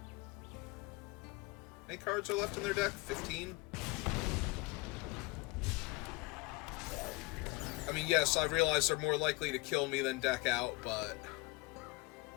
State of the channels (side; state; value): right; quieter; 24.7 dB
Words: many cards are left in their deck? 15? I mean, yes, I realize they're more likely to kill me than deck out, but...